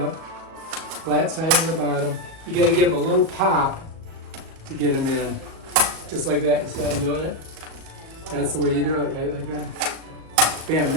flat side on the bottom. You gotta give them a little pop to get them in. Just like that, you see how I'm doing it? That's the way you do it, right, like that. Bam,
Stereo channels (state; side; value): late; left; 37 ms